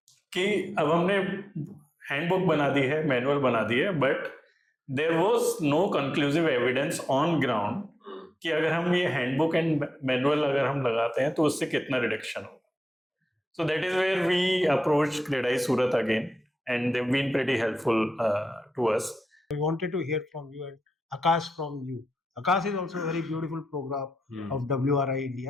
कि अब हमने हैंडबुक बना दी है, मैनुअल बना दी है, but there was no conclusive evidence on ground कि अगर हम ये हैंडबुक एंड मैनुअल अगर हम लगाते हैं तो उससे कितना रिडक्शन होगा. So that is where we approach CREDAI Surat again and they have been pretty helpful to us. We wanted to hear from you and Akash from you. Akash is also a very beautiful program of WRI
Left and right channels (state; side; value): normal; both; correlation 0.91